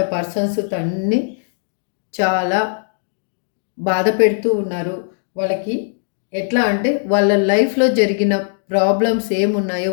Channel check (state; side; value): silent; right; digital silence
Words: పర్సన్స్ తన్ని చాలా బాధ పెడుతూ ఉన్నారు. వాళ్ళకి ఎట్లా అంటే వాళ్ళ లైఫ్‌లో జరిగిన ప్రాబ్లమ్స్ ఏమున్నాయో,